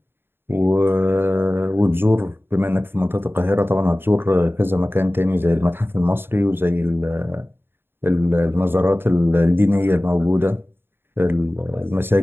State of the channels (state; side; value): late; left; 0.11 ms